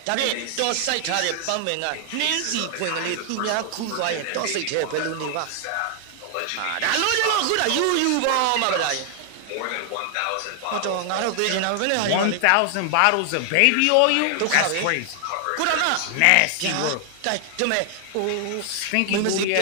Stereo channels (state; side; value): different; both; correlation 0.00